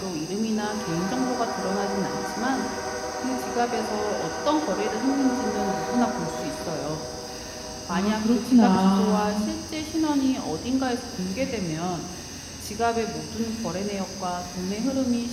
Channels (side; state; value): both; identical; correlation 1.00